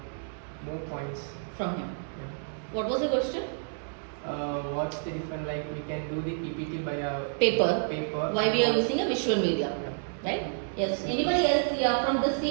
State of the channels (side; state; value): left; silent; 58 dB below the other